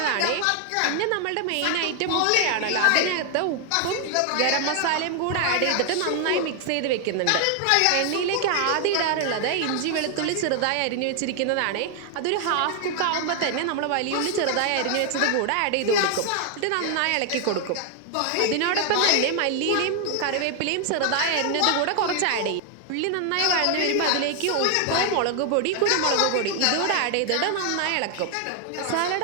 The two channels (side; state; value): both; different; correlation 0.00